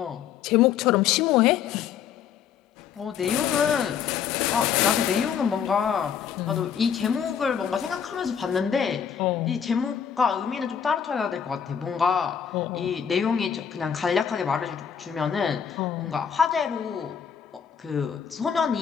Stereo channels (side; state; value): right; quieter; 7.9 dB